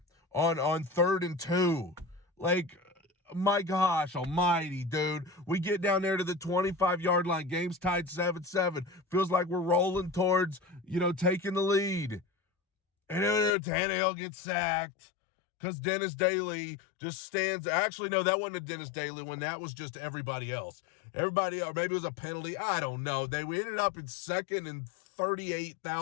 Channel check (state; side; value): drops out; right; at 13.5 s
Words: on 3rd and 2. Like, my gosh almighty, dude. We get down there to the 25-yard line. Game's tied 7-7. Feels like we're rolling towards, taking the lead. And then Tannehill gets sacked because Dennis Daly just stands. Actually, no, that wasn't a Dennis Daly one. That was just everybody else. Everybody else, maybe it was a penalty. I don't know. We ended up in 2nd and